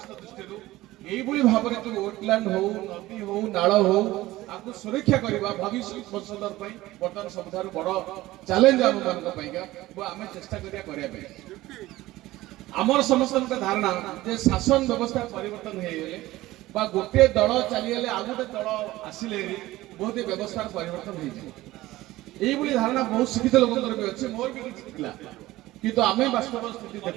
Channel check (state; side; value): quieter; left; 17.3 dB